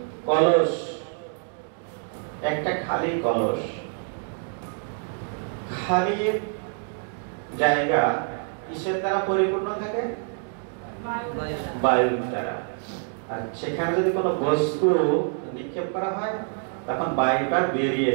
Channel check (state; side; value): silent; left; 55 dB below the other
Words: কলস, একটা খালি কলস, খালি জায়গা কিসের দ্বারা পরিপূর্ণ থাকে? বায়ুর দ্বারা। আর সেখানে যদি কোনো বস্তু নিক্ষেপ করা হয় তখন বায়ুটা বেরিয়ে